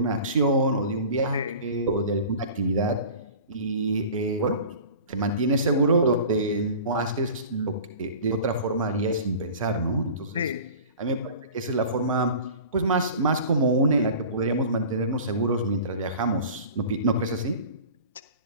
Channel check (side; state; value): both; inverted; correlation -0.40